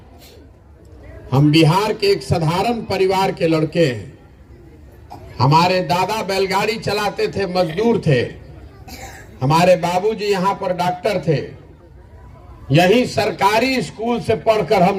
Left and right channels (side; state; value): both; identical; correlation 1.00